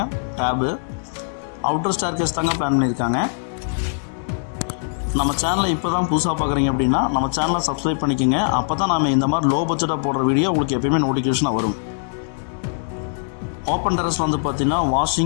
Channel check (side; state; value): right; silent; digital silence